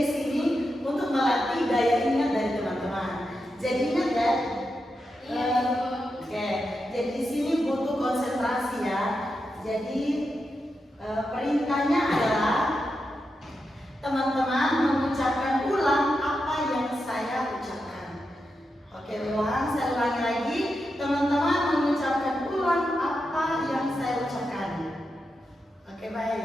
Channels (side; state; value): both; normal; correlation 0.87